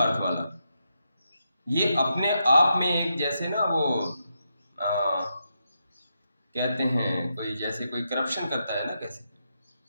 वाला, ये अपने आप में एक जैसे ना वो कहते हैं कोई जैसे कोई करप्शन करता है ना, कैसे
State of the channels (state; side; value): inverted; both; correlation -0.83